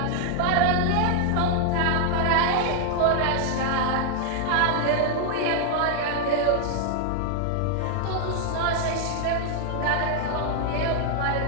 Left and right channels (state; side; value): different; both; correlation 0.00